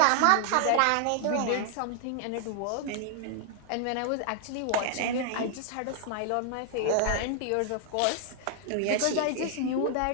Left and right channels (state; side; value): different; both; correlation 0.00